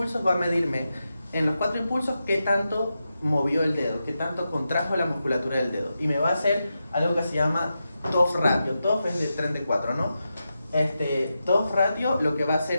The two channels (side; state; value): both; inverted; correlation -0.89